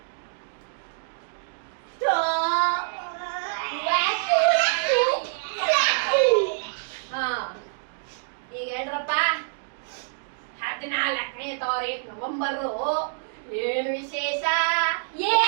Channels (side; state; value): left; silent; digital silence